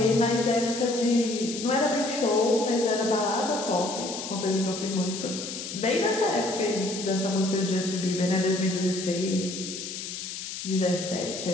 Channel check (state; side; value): noise; left; hiss, 7 dB below the sound